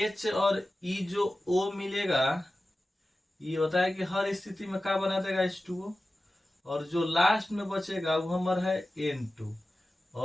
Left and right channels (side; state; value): both; normal; correlation 0.95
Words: और E जो O मिलेगा, ये होता है कि हर स्थिति में क्या बना देगा? H2O। और जो लास्ट में बचेगा वो हमारा है N2,